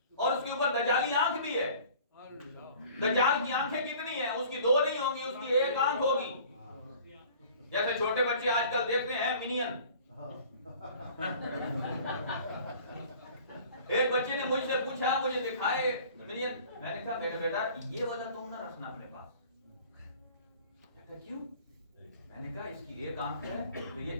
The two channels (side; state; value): both; inverted; correlation -0.48